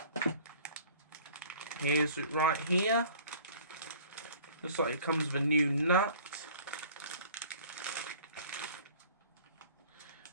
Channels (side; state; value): both; inverted; correlation -0.49